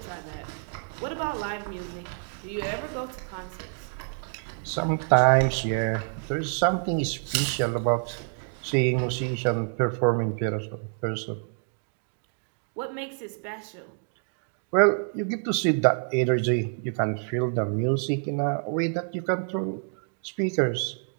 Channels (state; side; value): silent; left; 60 dB below the other